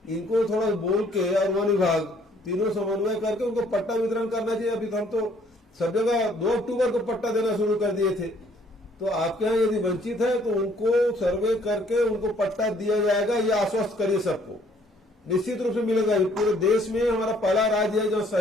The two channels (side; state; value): both; normal; correlation 0.62